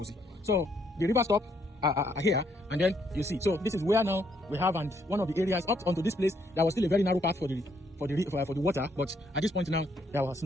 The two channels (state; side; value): normal; both; correlation 0.71